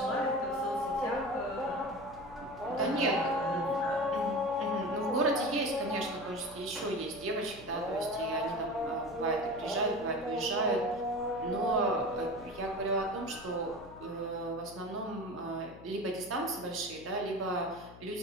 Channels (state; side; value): noise; left; hum, 18 dB below the sound